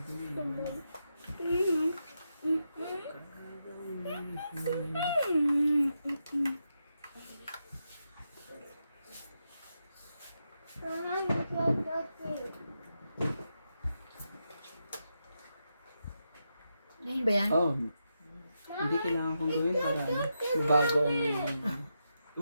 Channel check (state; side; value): inverted; both; correlation -0.86